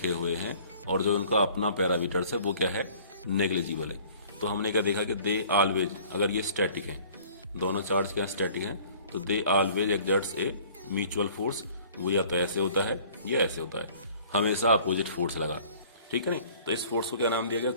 हुए हैं और जो उनका अपना पैरामीटर्स है वो क्या है, नेग्लिजिबल है। तो हमने क्या देखा कि दे ऑलवेज, अगर ये स्टैटिक हैं, दोनों चार्ज क्या स्टैटिक हैं, तो they always exerts a mutual force. वो या तो ऐसे होता है या ऐसे होता है, हमेशा अपोजिट फोर्स लगा, ठीक है ना। तो इस फोर्स को क्या नाम दिया गया,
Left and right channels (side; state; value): both; inverted; correlation -0.52